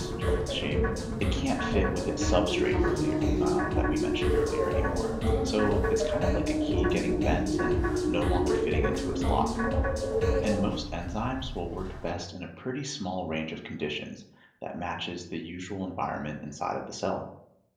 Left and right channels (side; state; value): both; identical; correlation 1.00